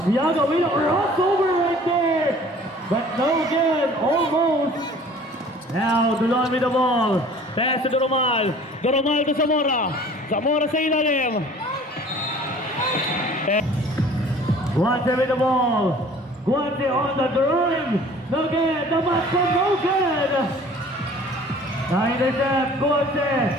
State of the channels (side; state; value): both; normal; correlation 0.49